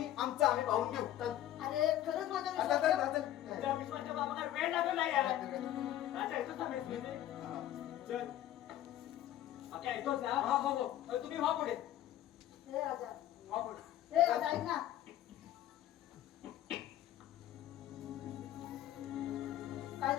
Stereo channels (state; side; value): quieter; right; 12.7 dB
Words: आम्ही पाहून घेऊ चल अरे खरंच माझ्या आता विश्वास चल, ठेव. चल. त्या विश्वाच्या बाबाला वेळ लागत नाही यार राजा येतोच ना मेस मध्ये हा. चल ओके येतोच ना हा हो हो तुम्ही व्हा पुढे ए राजा व्हा पुढे ए राजा ऐक ना काय